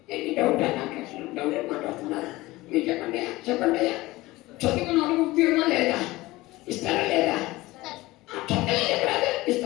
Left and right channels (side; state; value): right; quieter; 19.4 dB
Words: ఎన్ని డౌట్ నాకు డౌట్ మాట్లాడుతున్నారు మీరు చెప్పండి. చెప్పండి అయ్యా. చదువుకున్న వాళ్ళకి ఉద్యోగమా లేదా? ఇస్తారా లేదా? చక్కగా చెప్పరాదు.